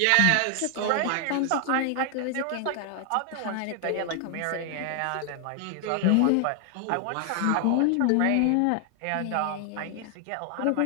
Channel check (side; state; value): both; different; correlation 0.00